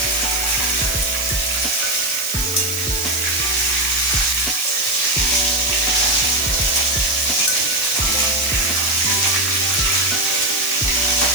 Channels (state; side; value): noise; right; hiss, 5 dB below the sound